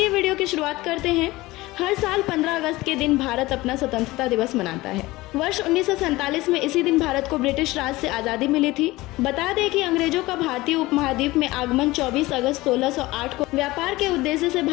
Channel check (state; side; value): quieter; right; 19.7 dB